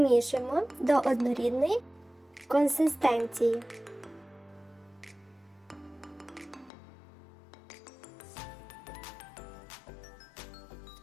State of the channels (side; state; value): right; drops out; at 6.7 s